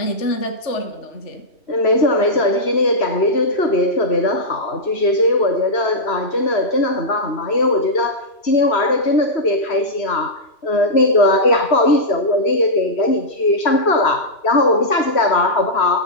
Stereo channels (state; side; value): late; right; 3.0 ms